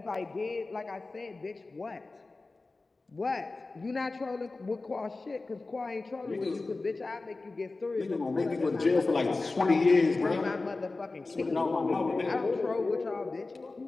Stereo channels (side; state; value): right; quieter; 3.5 dB